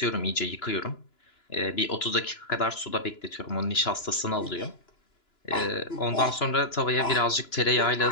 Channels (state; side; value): late; right; 2.9 ms